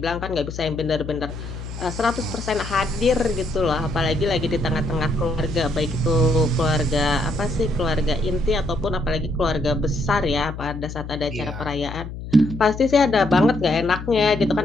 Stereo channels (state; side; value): noise; left; hum, 10 dB below the sound